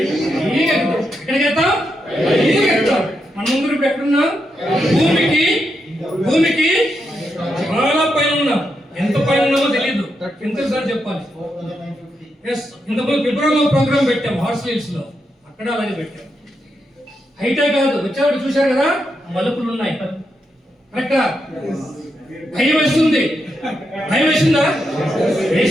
ఎక్కడికి ఎక్కుతాం? మన ముందు ఇప్పుడు ఎక్కడున్నాం? భూమికి చాలా పైన ఉన్నాం. ఎంత పైన ఉన్నామో తెలియదు. ఎంతసారి చెప్పాలి? ఇంతకుముందు ఫిబ్రవరిలో ప్రోగ్రామ్ పెట్టాం హార్స్ హిల్స్ లో, అక్కడ అలాగే పెట్టాం. హైటే కాదు, వచ్చేవాడు చూశారు కదా, మలుపులు ఉన్నాయి. కరెక్టా? భయం వేస్తుంది. భయం వేసిందా?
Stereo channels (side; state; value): both; normal; correlation 0.83